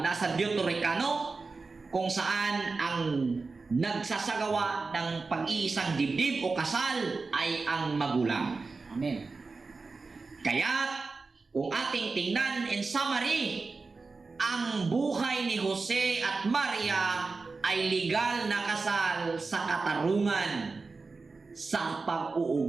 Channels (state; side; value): quieter; left; 4.1 dB